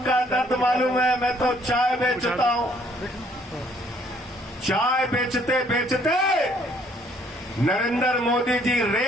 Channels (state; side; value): normal; both; correlation 0.63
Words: का दर्द मालूम है। मैं तो चाय बेचता हूं। चाय बेचते बेचते नरेंद्र मोदी जी